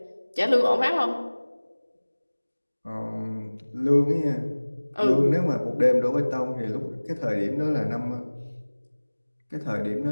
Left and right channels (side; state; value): both; inverted; correlation -1.00